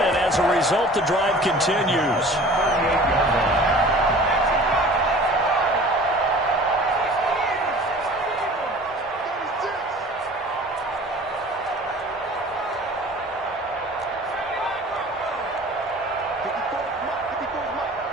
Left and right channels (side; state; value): both; normal; correlation 0.45